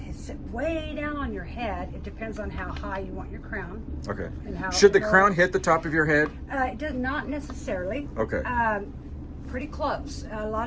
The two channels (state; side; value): identical; both; correlation 1.00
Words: sit way down on your head, it depends on how high you want your crown. Okay. And how Should the low. crown hit the top of your head? It does not necessarily. Okay. Pretty close. A lot